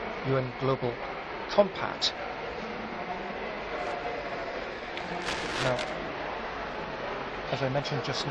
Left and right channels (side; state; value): both; identical; correlation 1.00